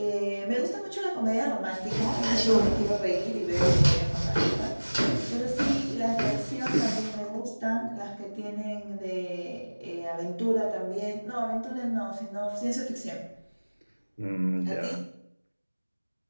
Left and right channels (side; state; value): both; inverted; correlation -1.00